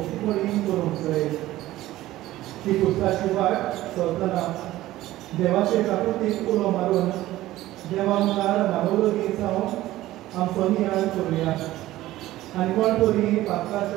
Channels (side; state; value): left; quieter; 15.8 dB